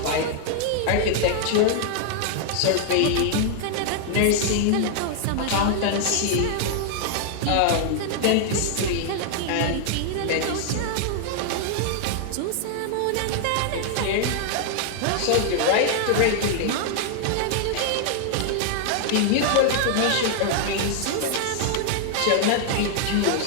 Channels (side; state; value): both; different; correlation 0.00